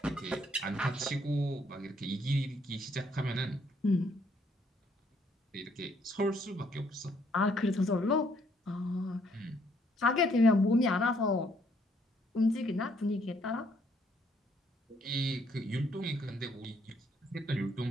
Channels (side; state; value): both; normal; correlation 0.68